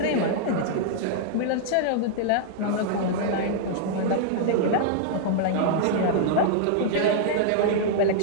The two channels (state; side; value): different; both; correlation -0.01